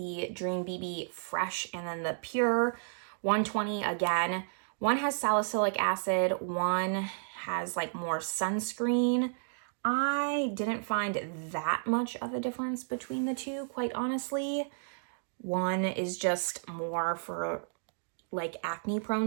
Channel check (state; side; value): silent; left; digital silence